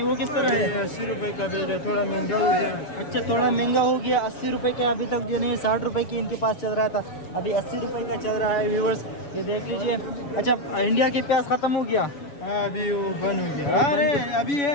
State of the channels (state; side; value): late; right; 7.0 ms